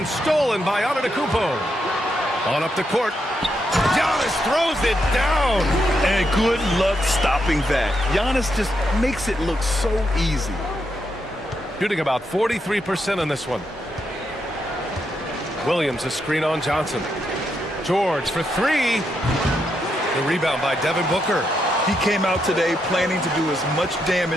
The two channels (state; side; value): normal; both; correlation 0.81